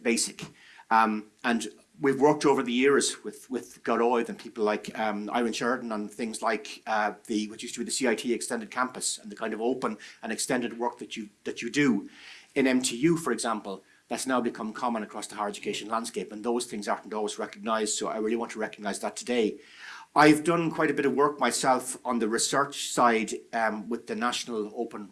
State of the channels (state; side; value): identical; both; correlation 1.00